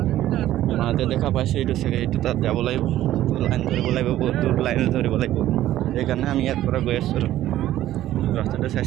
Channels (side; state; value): left; quieter; 13.6 dB